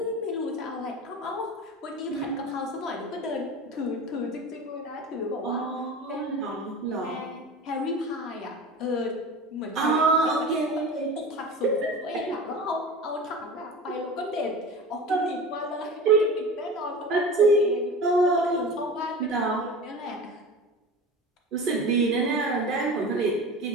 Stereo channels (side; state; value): both; normal; correlation 0.33